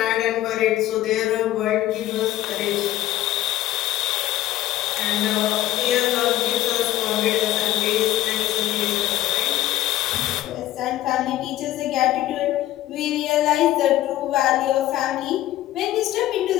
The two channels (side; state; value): right; quieter; 14.5 dB